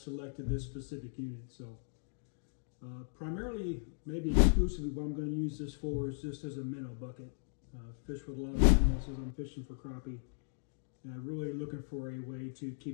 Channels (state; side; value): silent; right; digital silence